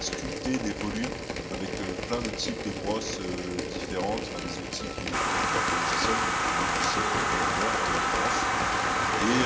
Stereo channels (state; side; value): identical; both; correlation 1.00